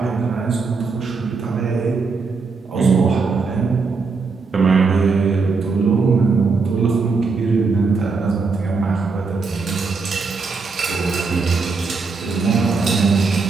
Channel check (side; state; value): left; quieter; 4.5 dB